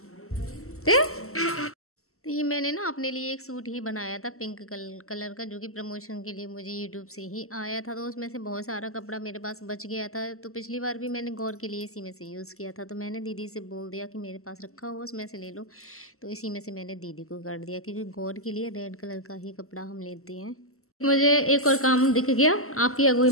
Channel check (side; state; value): right; late; 0.63 ms